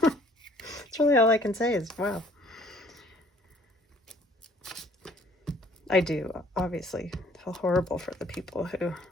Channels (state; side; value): normal; both; correlation 0.58